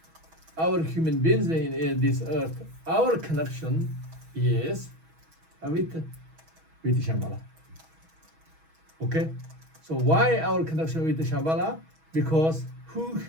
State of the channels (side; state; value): left; late; 6.2 ms